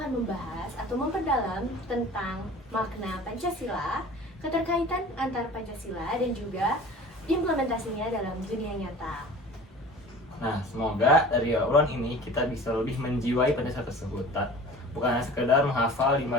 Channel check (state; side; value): normal; both; correlation 0.42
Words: membahas atau memperdalam tentang makna Pancasila, keterkaitan antar Pancasila dan juga implementasinya dalam dunia nyata. Nah, semoga dari obrolan ini kita bisa lebih menjiwai Pancasila tersebut. Bukan hanya sekedar menghafal 5